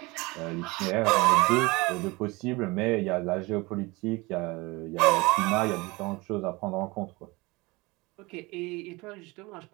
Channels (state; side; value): quieter; left; 23.7 dB